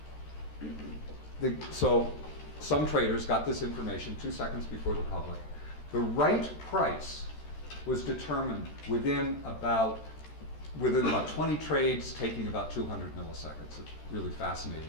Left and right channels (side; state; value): right; late; 13 ms